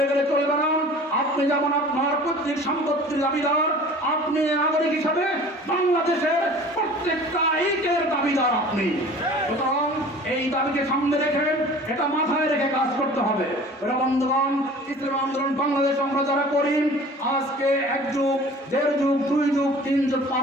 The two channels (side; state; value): both; normal; correlation 0.44